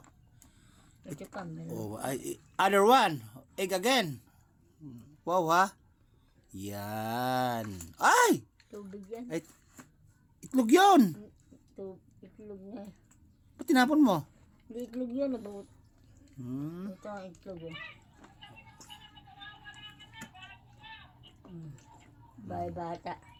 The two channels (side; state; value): both; identical; correlation 1.00